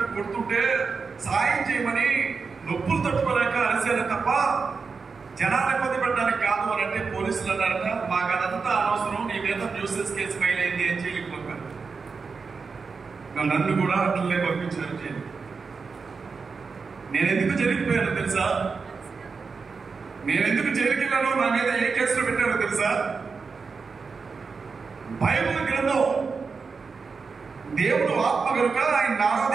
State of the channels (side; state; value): left; quieter; 4.9 dB